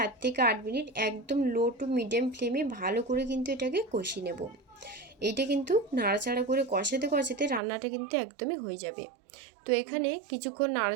থেকে 8 মিনিট একদম লো টু মিডিয়াম ফ্লেমে ভালো করে কিন্তু এটাকে কষিয়ে নেব। এইটা কিন্তু নাড়াচাড়া করে কষাতে কষাতে রান্নাটা কিন্তু একদমই হয়ে যাবে। তো এখানে কিছুক্ষণ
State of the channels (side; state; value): left; drops out; at 7.6 s